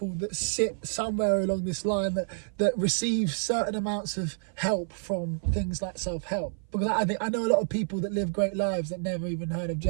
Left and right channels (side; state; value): left; silent; 56 dB below the other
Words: that sit somewhere along this line that receive certain amounts of help from things like self-help. Because I know a lot of people that live great lives that never even heard of